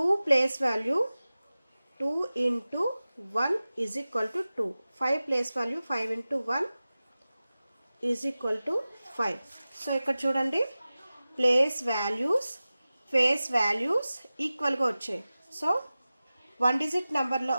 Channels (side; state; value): both; inverted; correlation -0.96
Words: place value 2 into 1 is equal to 2. 5 place value 5 into 1 is equal to 5. So ఇక్కడ చూడండి, place values face values ఈక్వల్గా వచ్చాయి. So one